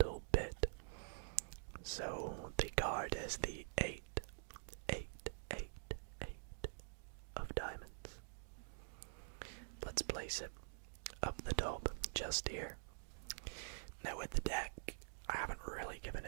bit. So the card is the 8 of diamonds. Let's place it up the top, just here. Now with the deck, I haven't really given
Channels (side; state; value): left; silent; digital silence